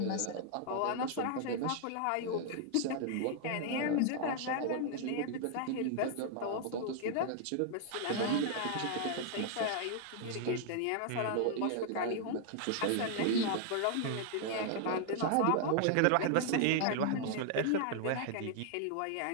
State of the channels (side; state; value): both; different; correlation 0.00